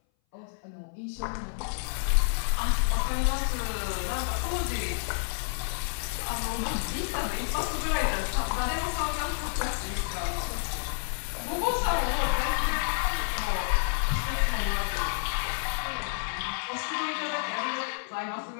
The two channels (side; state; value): right; silent; 58 dB below the other